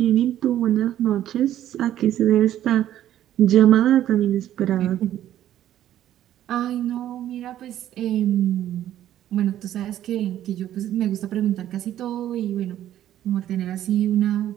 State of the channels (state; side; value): quieter; left; 12.0 dB